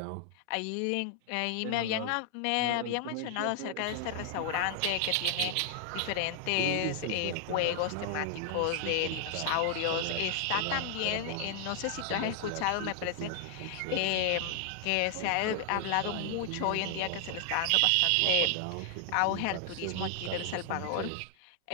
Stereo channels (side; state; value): both; different; correlation 0.00